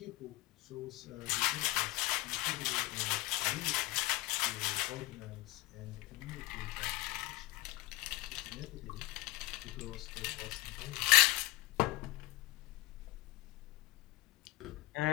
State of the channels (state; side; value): quieter; right; 21.7 dB